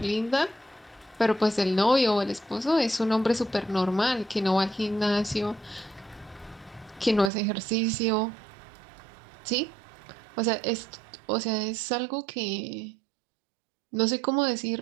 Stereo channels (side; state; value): left; drops out; at 7.3 s